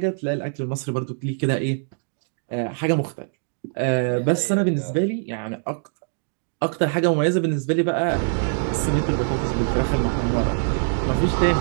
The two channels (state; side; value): silent; left; digital silence